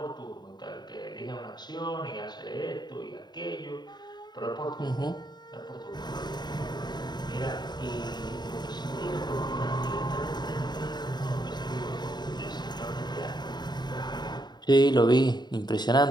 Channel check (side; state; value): right; late; 0.21 ms